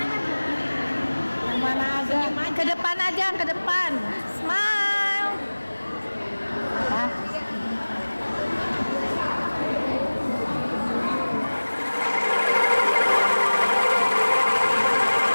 depan aja, ke depan. Smile.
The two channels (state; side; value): inverted; both; correlation -1.00